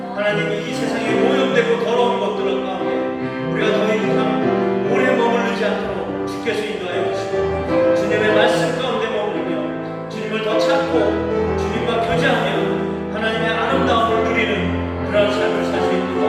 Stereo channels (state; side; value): identical; both; correlation 1.00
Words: 하나님이 이 세상에 오염되고 더러운 것들 가운데 우리가 더 이상 오래 머무르지 않도록 주께서 인도하여 주시고 주님의 말씀 가운데 머무르며 주님을 더 찾고 주님과 교제하며 하나님의 아름다움을 누리는 그런 삶을 살 수